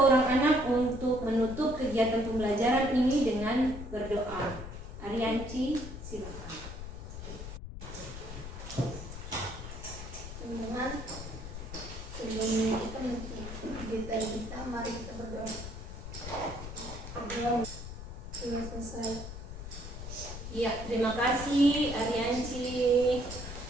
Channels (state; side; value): noise; left; rumble, 9 dB below the sound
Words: orang anak untuk menutup kegiatan pembelajaran ini dengan berdoa. Arianci, silakan. Teman-teman, sebelum kita kita mari kita berdoa. Berdoa sudah selesai. Iya, terima kasih Arianci.